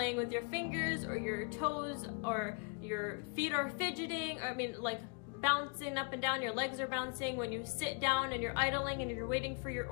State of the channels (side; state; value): right; quieter; 35.3 dB